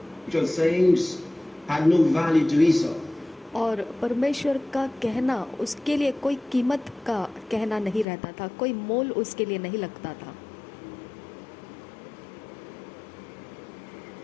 things had no value to Esau. और परमेश्वर का कहना उसके लिए कोई कीमत का कहना नहीं रहता था, कोई मोल उसके लिए नहीं लगता था।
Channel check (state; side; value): drops out; right; at 8.1 s